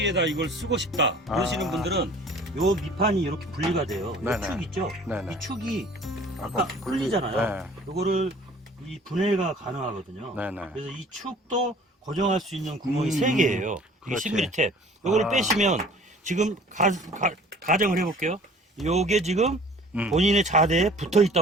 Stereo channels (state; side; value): normal; both; correlation 0.49